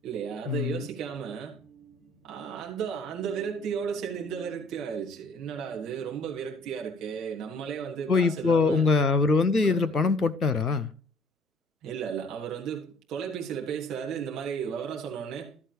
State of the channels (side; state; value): both; normal; correlation 0.57